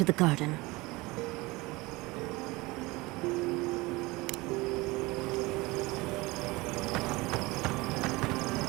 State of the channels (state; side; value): quieter; left; 22.4 dB